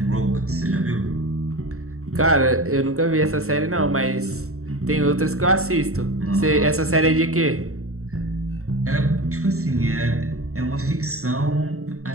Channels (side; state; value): left; late; 0.64 ms